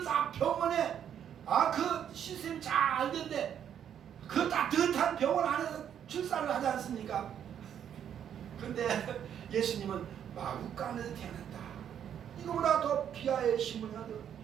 다 병원에 그 시스템이 잘 됐는데 그 따뜻한 병원 안에서 출산을 하지 않습니까? 근데 예수님은 마구간에서 태어났다. 이거보다 더 비하의 신분이 어디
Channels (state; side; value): quieter; left; 9.2 dB